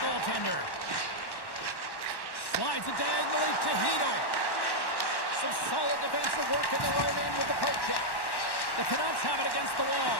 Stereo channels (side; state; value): right; late; 1.1 ms